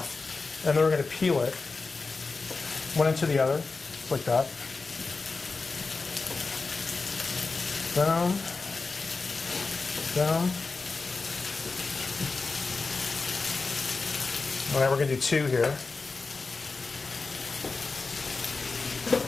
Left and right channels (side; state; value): right; quieter; 4.1 dB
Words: and then we're going to peel it one into the other, like that. Down, down. All right, we're going to do 2 here.